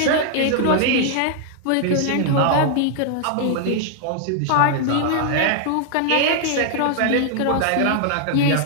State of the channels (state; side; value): different; both; correlation -0.01